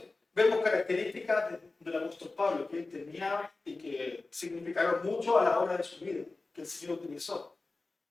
vemos características del apóstol Pablo que él tenía y que significaron mucho a la hora de su vida, que el Señor utilizó.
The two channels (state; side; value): quieter; right; 3.5 dB